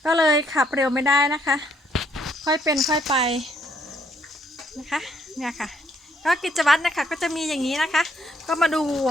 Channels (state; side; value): normal; both; correlation 0.69